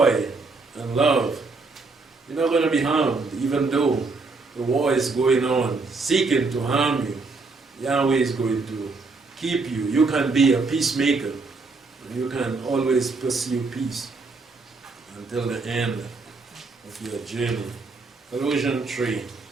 and love. You're not going to be harmed, even though the war is going on, seeking to harm you. Yahweh is going to keep you. You can be a peacemaker. You can always pursue peace until the end of your journey. Colossians 3.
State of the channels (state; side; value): quieter; left; 3.9 dB